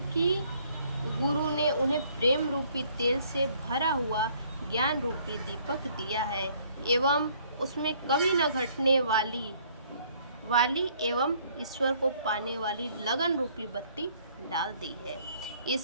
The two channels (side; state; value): both; inverted; correlation -0.62